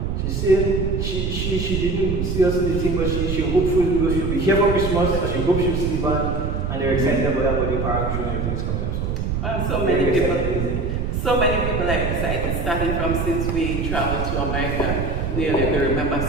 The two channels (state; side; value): noise; right; rumble, 1 dB below the sound